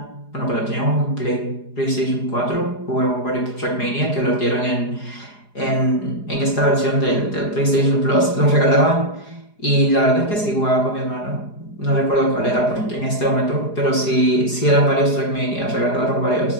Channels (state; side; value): late; right; 4.9 ms